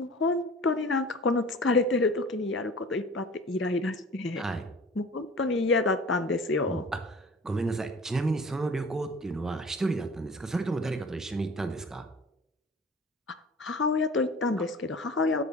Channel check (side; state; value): both; normal; correlation 0.43